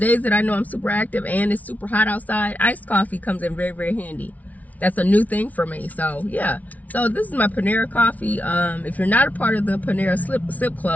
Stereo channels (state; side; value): late; right; 0.072 ms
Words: that I know I'm super active and it's super hot outside, iced coffee comes in very, very handy. That's a new thing for me. So yeah, so this is my Panera coffee. If you're not a part of the Panera sip